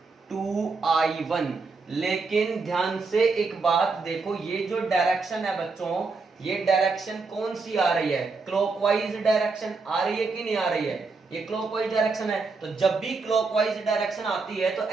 2i1। लेकिन ध्यान से एक बात देखो, ये जो डायरेक्शन है बच्चों, ये डायरेक्शन कौन सी आ रही है, क्लॉकवाइज डायरेक्शन आ रही है कि नहीं आ रही है, ये क्लॉकवाइज डायरेक्शन है। तो जब भी क्लॉकवाइज डायरेक्शन आती है तो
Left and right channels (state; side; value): quieter; left; 4.2 dB